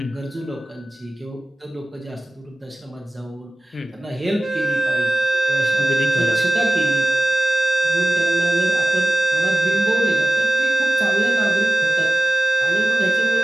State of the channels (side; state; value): both; normal; correlation 0.97